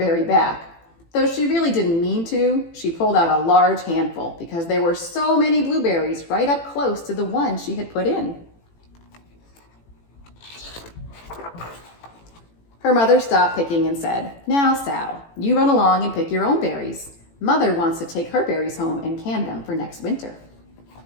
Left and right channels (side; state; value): right; late; 18 ms